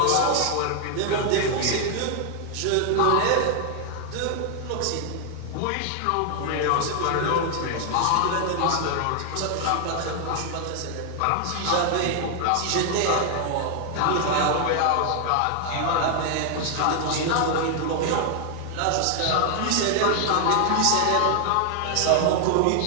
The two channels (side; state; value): both; different; correlation 0.00